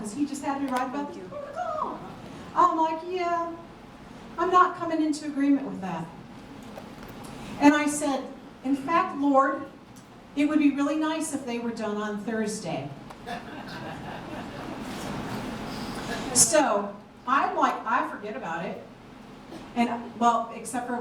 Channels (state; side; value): identical; both; correlation 1.00